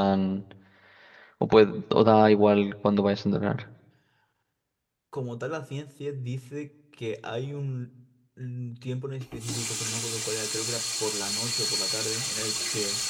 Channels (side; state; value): both; identical; correlation 1.00